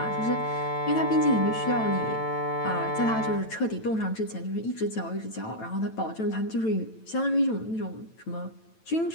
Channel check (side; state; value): right; late; 9.0 ms